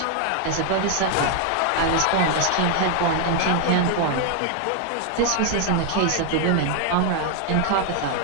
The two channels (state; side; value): different; both; correlation 0.00